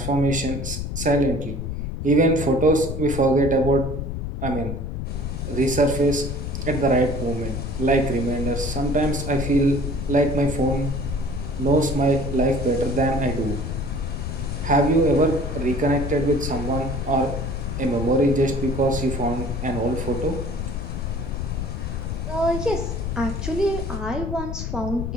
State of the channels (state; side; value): noise; left; rumble, 4 dB below the sound